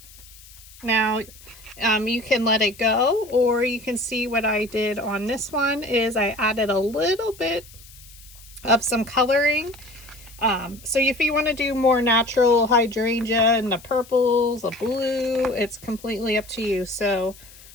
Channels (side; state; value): left; noise; hiss, 21 dB below the sound